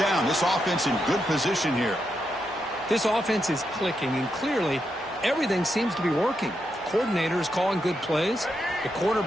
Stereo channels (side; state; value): both; normal; correlation 0.83